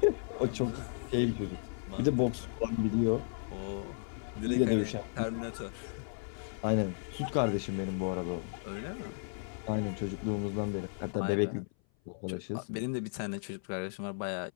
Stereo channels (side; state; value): right; silent; 55 dB below the other